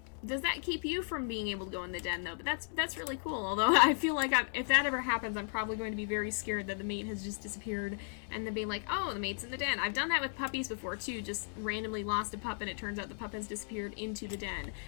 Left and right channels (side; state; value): right; silent; 54 dB below the other